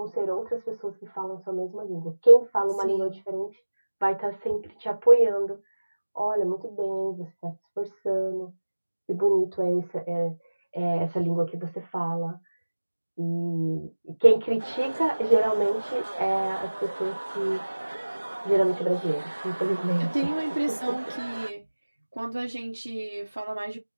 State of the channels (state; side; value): inverted; both; correlation -1.00